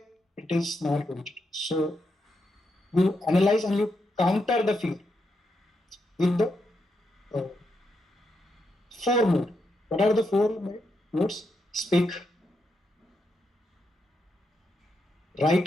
it is not going to. So you analyze and you counter the fear with the uh, four mode. What are the four modes? Speak,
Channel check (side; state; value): both; normal; correlation 0.82